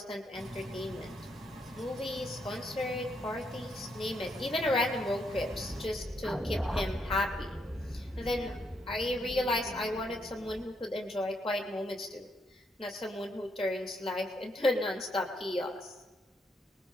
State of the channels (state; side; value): normal; both; correlation 0.76